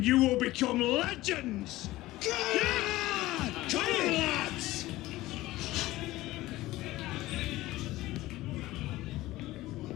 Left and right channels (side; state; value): right; quieter; 17.4 dB